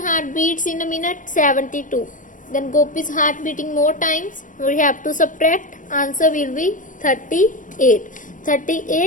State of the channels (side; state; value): right; late; 0.38 ms